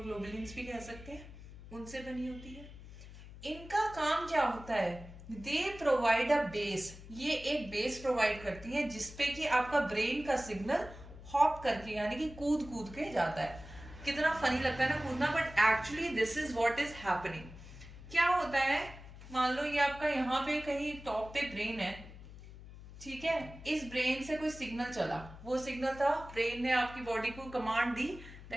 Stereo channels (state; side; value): noise; left; hum, 16 dB below the sound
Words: भी कह सकते हैं, उनसे बनी होती है. इनका काम क्या होता है, दे प्रोवाइड अ बेस. ये एक बेस प्रोवाइड करती है जिसपे कि आपका ब्रेन का सिग्नल हॉप करके यानी कि कूद कूद के जाता है. कितना फनी लगता है ना कूदना, but actually this is what is happening. क्या होता है, मान लो ये आपका यहाँ पे कहीं टॉप पे ब्रेन है. ठीक है, इस ब्रेन से कोई सिग्नल चला, वो सिग्नल था, ब्रेन ने आपकी बॉडी को कमांड दी